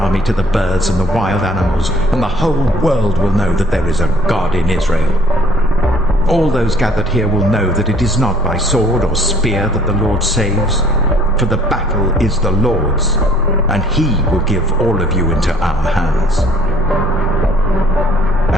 to the birds and the wild animals, and the whole world will know that there is a God in Israel. All those gathered here will know that it is not by sword or spear that the Lord saves, for the battle is the Lord's, and he will give all of you into our hands."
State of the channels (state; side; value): normal; both; correlation 0.58